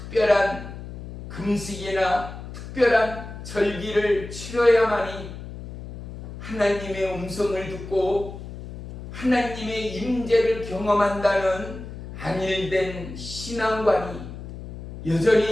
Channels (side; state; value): left; noise; hum, 11 dB below the sound